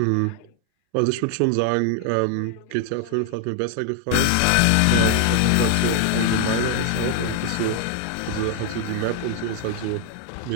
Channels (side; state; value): both; different; correlation 0.00